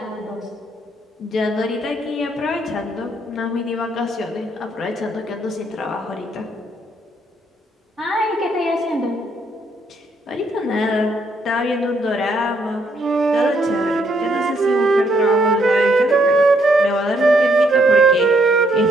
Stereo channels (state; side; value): normal; both; correlation 0.72